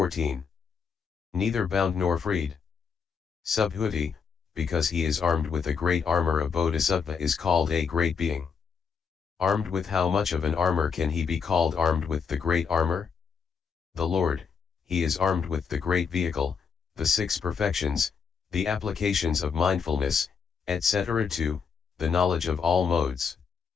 Neither bound nor freed. Subhuti, because he is armed with a great armor of Bodhisattva, is called a great being. Armed with how much of an armor can he be called armed with the great armor? The Lord, he is armed with the great vehicle, the six perfections, the applications of mindfulness, etc. 2, the knowledge of all modes.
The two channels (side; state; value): right; quieter; 6.1 dB